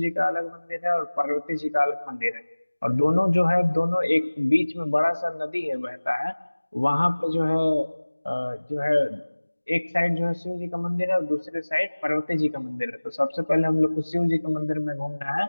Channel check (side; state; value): both; inverted; correlation -1.00